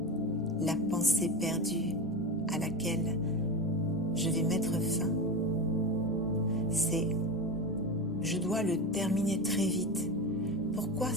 La pensée perdue à laquelle je vais mettre fin, c'est « je dois le terminer très vite ». Pourquoi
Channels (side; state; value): both; normal; correlation 0.22